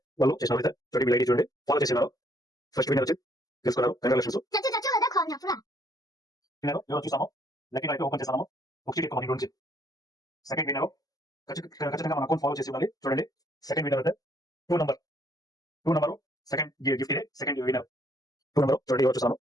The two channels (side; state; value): right; late; 0.18 ms